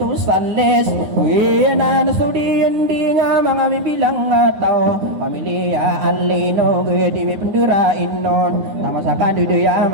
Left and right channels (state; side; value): late; left; 9.4 ms